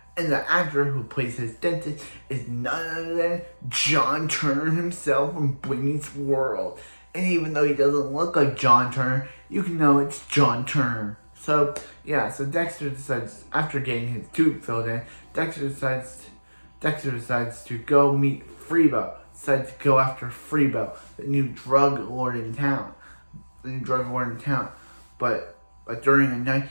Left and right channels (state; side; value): inverted; both; correlation -1.00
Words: And the actor who plays his dentist is none other than John Turner himself from Boy Meets World. And even though he doesn't look like John Turner, you can know it's John Turner. So Dexter decides, after getting his tooth filled in, Dexter decides to go meet Freebo. Decides to go after Freebo, the new drug lord in town. But during the night,